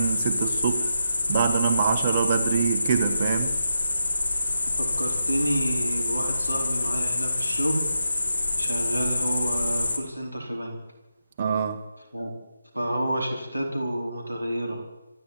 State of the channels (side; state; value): both; inverted; correlation -0.85